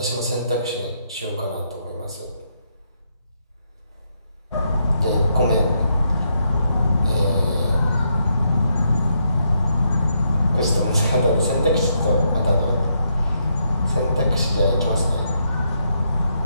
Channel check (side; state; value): both; inverted; correlation -0.78